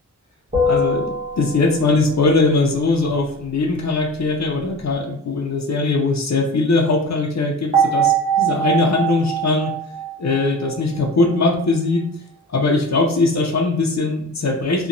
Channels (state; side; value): normal; both; correlation 0.35